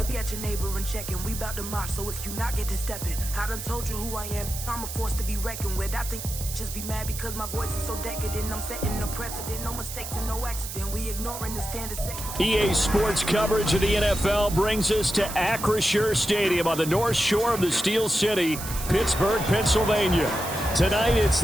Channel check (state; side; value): noise; right; hiss, 8 dB below the sound